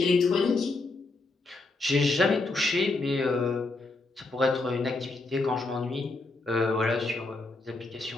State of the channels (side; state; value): right; quieter; 3.3 dB